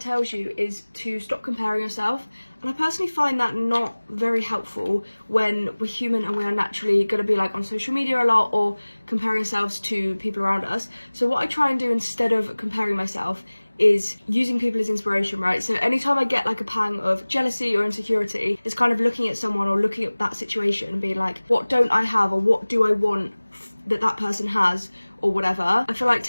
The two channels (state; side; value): inverted; both; correlation -1.00